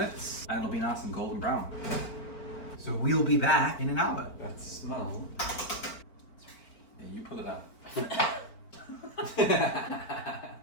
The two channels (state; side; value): late; right; 4.4 ms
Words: and it'll be nice and golden brown. So we'll be back in an hour. That smell. Yeah, you pull it up.